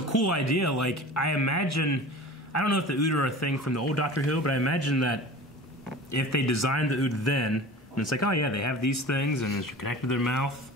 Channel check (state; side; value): normal; both; correlation 0.38